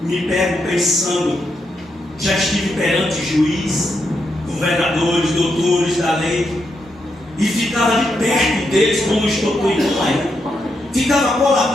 me pego pensando, já estive perante juiz, governadores, doutores da lei, e ficava de perto deles, como estou cuidando aí. Ficava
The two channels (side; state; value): both; normal; correlation 0.82